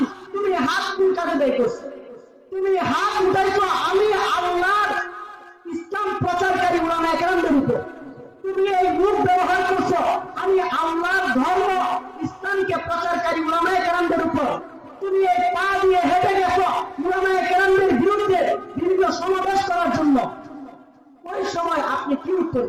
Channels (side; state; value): both; identical; correlation 1.00